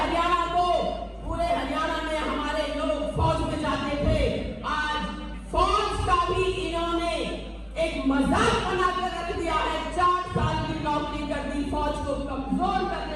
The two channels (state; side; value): identical; both; correlation 1.00